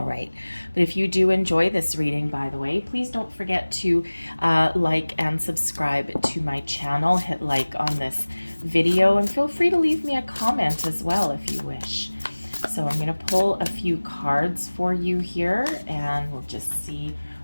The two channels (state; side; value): inverted; both; correlation -1.00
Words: right, but if you do enjoy this reading, by the way, please don't forget to like and subscribe to my channel. Hit like on this video and feel free to leave me a comment as well if you wish. So I'm going to pull a few cards for you here and we'll just see